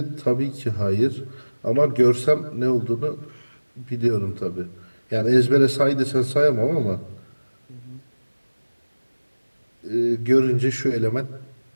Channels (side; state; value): both; inverted; correlation -1.00